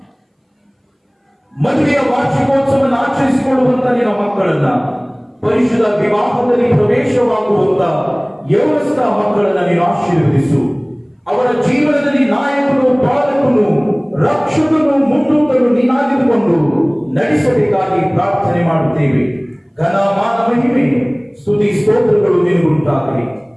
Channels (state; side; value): identical; both; correlation 1.00